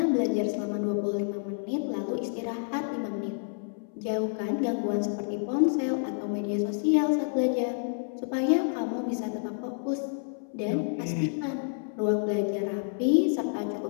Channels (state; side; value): silent; right; 59 dB below the other